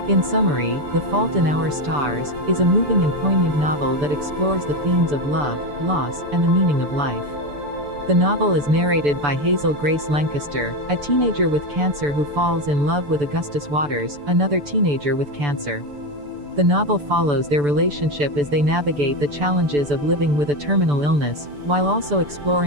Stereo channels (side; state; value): left; late; 6.9 ms